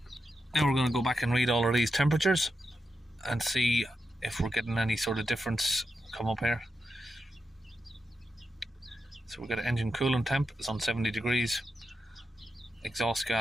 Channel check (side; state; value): both; normal; correlation 0.87